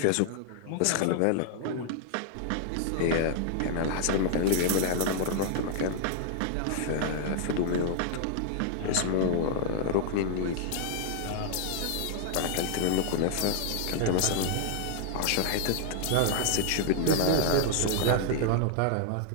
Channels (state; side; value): different; both; correlation -0.01